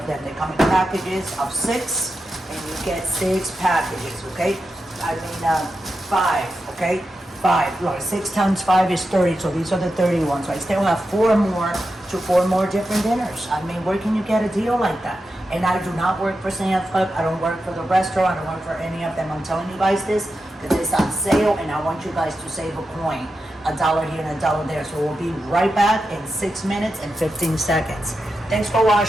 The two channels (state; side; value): normal; both; correlation 0.89